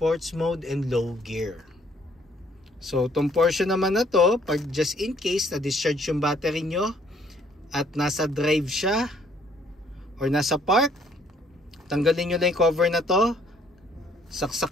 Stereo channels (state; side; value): normal; both; correlation 0.63